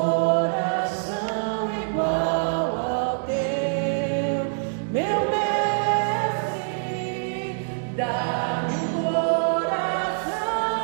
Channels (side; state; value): left; silent; digital silence